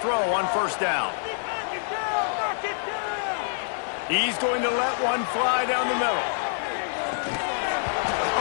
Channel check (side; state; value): right; silent; digital silence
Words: on first down. He's going to let one fly down the middle.